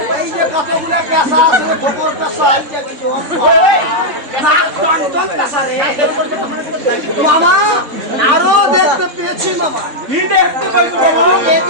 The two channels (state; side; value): late; left; 3.4 ms